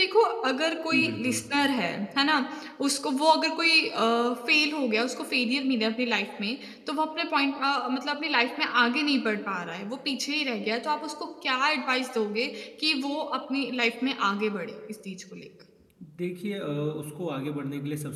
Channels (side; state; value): both; identical; correlation 1.00